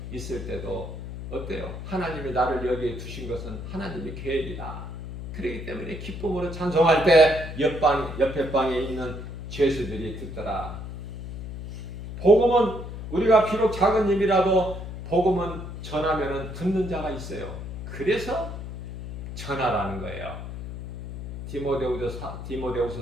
있을 때도 어때요? 하나님이 나를 여기에 두신 것은 하나님의 계획이다. 그렇기 때문에 기쁨으로 찬송할 때 옆에 방에 있는 죄수들이 듣더라. 복음은 우리가 비록 작은 힘이라도 복음은 전하면은 듣는 자가 있어요. 그래서 전하라는 거예요.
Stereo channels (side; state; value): left; noise; hum, 8 dB below the sound